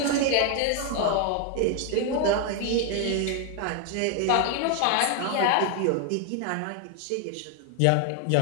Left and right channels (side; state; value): both; different; correlation 0.00